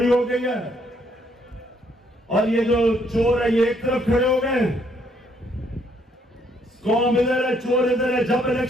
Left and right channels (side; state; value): both; normal; correlation 0.69